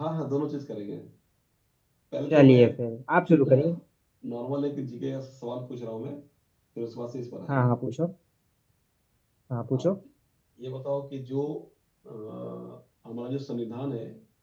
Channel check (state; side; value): identical; both; correlation 1.00